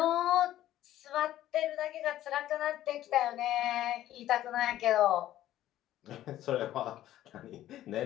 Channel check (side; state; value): right; quieter; 13.3 dB